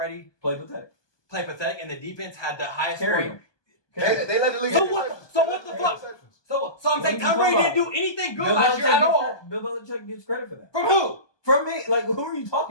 Played pathetic. played pathetic and the defense had the highest Carry scoring? him. They let the league. So what the fuck? So I'm What saying are you Tom talking Brady didn't about? do anything good Bill last year at all. Bill Belichick gets credit for that. From who? From me. Like, who are you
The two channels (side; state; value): right; late; 1.2 ms